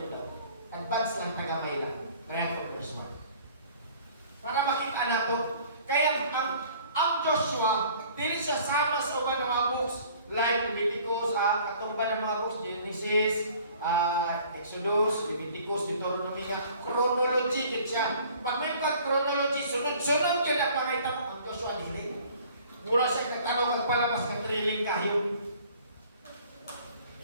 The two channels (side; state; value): both; inverted; correlation -0.52